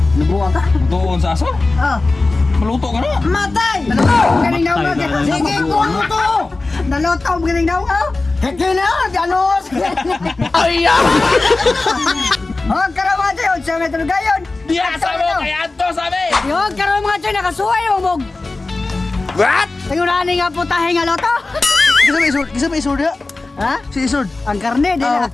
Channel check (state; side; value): quieter; right; 3.3 dB